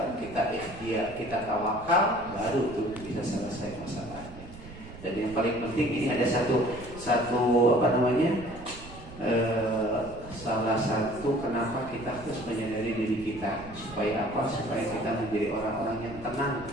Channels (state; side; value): noise; right; rumble, 16 dB below the sound